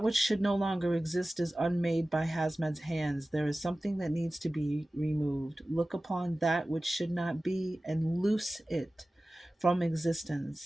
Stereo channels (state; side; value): normal; both; correlation 0.96